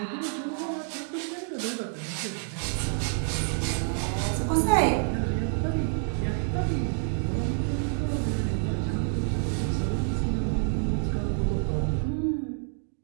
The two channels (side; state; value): left; silent; 59 dB below the other